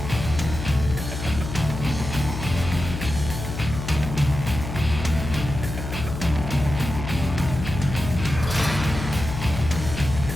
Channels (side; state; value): left; noise; hum, 7 dB below the sound